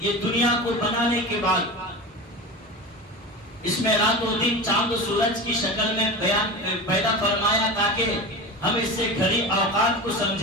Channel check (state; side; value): normal; both; correlation 0.28